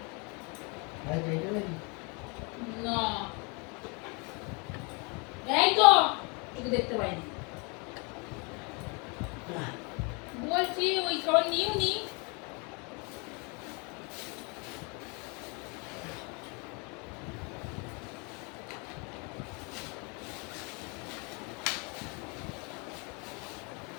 ভাই এইটা নাকি? না। এই তো তোকে দেখতে পাইনি। বলছি ওই খাবার নিও নি।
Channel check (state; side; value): quieter; right; 31.8 dB